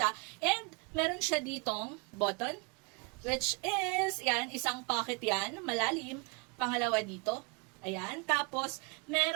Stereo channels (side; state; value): left; quieter; 31.4 dB